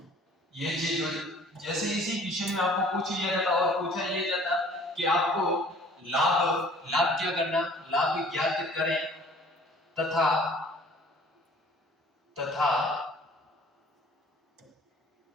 ये चीज जैसे इसी क्वेश्चन में आपको पूछ लिया जाता और पूछा ये जाता कि आपको लाभ क्या करना, लाभ ज्ञात करें तथा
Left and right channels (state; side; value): normal; both; correlation 0.52